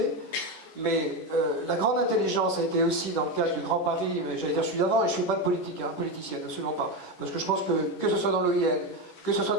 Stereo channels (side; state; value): right; late; 11 ms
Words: mais la grande intelligence a été aussi dans le cadre du Grand Paris, mais j'allais dire celui d'avant, et je ne fais pas de politique, politicienne, absolument pas. Parce que je pense que ce soit dans l'OIN, que ce soit